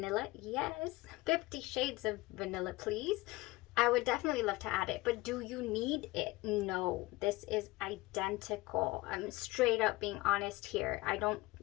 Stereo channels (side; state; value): right; quieter; 20.5 dB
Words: Yes. 50 shades of vanilla, please. I would definitely love to add it, but do you need it? No, this is identical. I'm straight up being honest here.